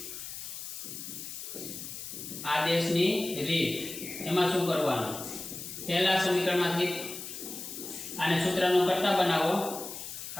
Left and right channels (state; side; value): noise; left; hiss, 9 dB below the sound